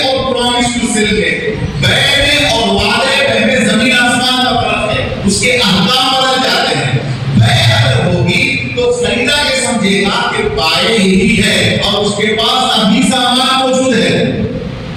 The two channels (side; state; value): both; identical; correlation 1.00